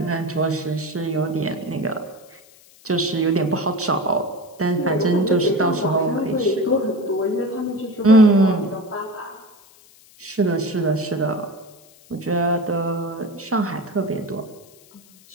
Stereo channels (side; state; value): left; noise; hiss, 26 dB below the sound